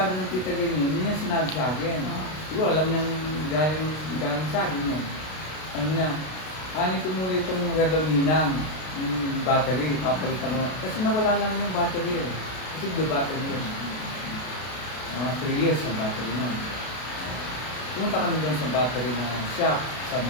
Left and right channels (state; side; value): late; right; 32 ms